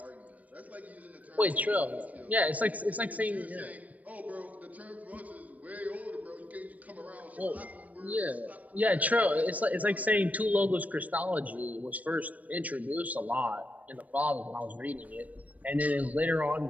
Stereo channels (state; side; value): late; left; 0.072 ms